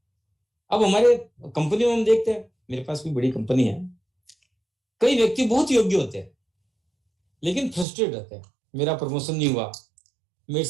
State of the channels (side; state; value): left; drops out; at 7.9 s